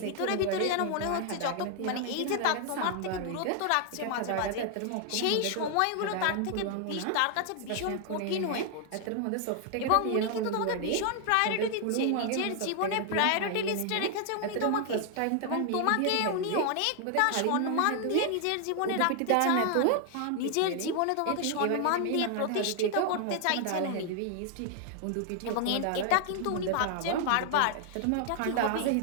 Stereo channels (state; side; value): different; both; correlation 0.00